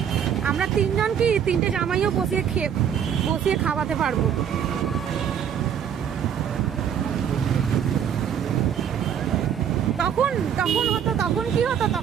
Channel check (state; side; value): quieter; left; 8.6 dB